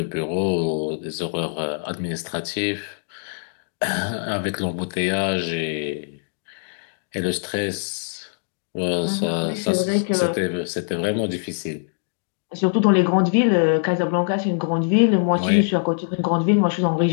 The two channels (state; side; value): silent; right; digital silence